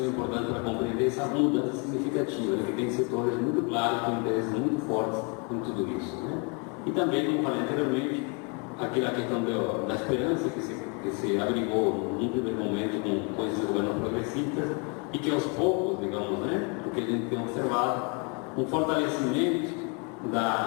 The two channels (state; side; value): quieter; right; 33.6 dB